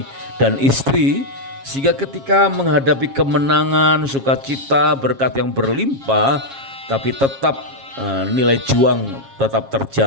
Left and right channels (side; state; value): left; late; 7.4 ms